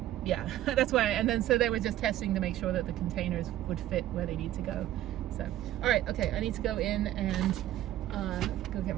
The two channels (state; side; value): quieter; left; 13.3 dB